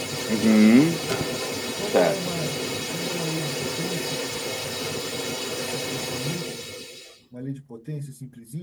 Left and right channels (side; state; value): both; identical; correlation 1.00